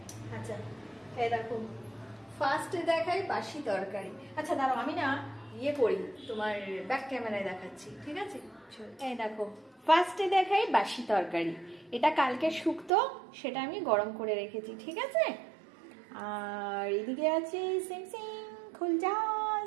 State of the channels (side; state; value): left; drops out; at 12.9 s